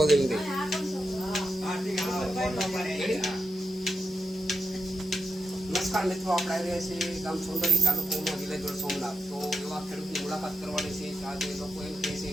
કે નથી. નમસ્કાર મિત્રો, આપણે આવી રહ્યા છીએ ગામ સોંદરી તાલુકામાં વિલેજોડ સોમનાથ. તો એવા ખેડૂતની મુલાકાત કરવાની છે. આજે લોકો એમ કહે છે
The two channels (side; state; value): both; normal; correlation 0.87